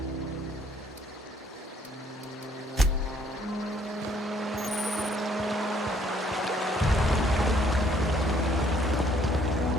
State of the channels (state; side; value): normal; both; correlation 0.64